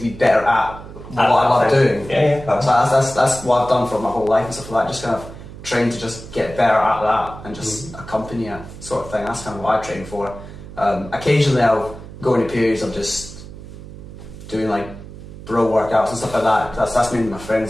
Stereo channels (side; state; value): right; noise; hum, 14 dB below the sound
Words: be better at what I love doing. Yeah. So that's what I've done for my whole life and stuff like that, just kind of train to just get better at that and just accompany it sort of thing. That's kind of what I train for. Occasionally I'll go into periods of just doing like bro workouts and stuff like that. That's mainly my friends